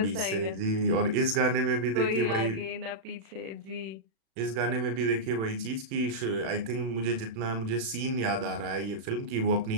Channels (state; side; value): late; left; 36 ms